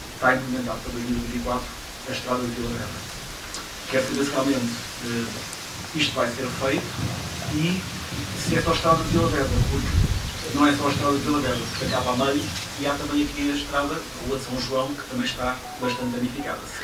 está implementado para 2024 a estrada de Vila Vedra. Quero saber se realmente isto vai ser feito e se é só a estrada de Vila Vedra, porque não é só a estrada de Vila Vedra, que acaba a meio, e há também aqui a estrada, a Rua de São João, que também está bastante danificada. Se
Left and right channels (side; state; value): both; identical; correlation 1.00